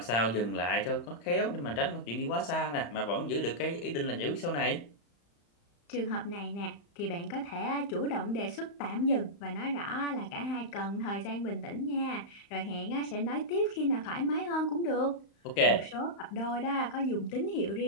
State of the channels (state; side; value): late; right; 35 ms